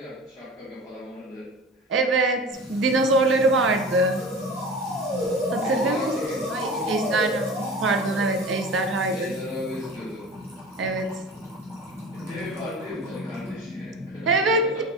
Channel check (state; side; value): normal; both; correlation 0.36